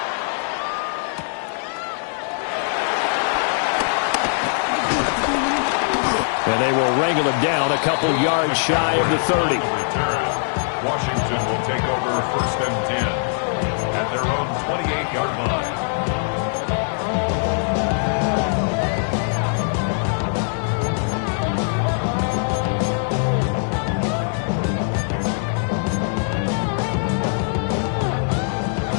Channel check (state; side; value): silent; right; digital silence